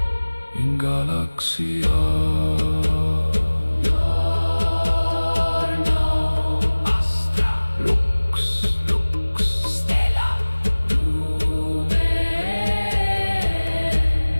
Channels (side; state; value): both; inverted; correlation -1.00